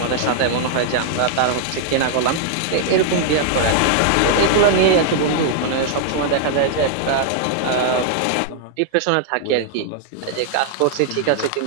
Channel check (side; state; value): both; different; correlation 0.00